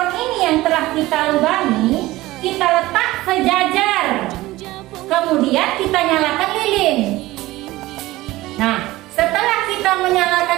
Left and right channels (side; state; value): left; quieter; 18.1 dB